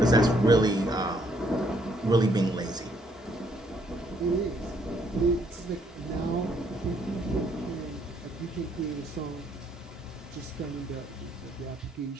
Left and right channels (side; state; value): both; normal; correlation 0.68